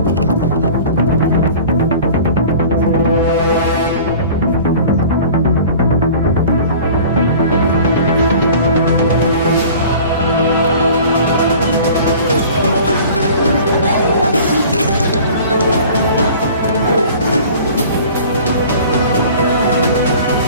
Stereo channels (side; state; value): both; inverted; correlation -0.44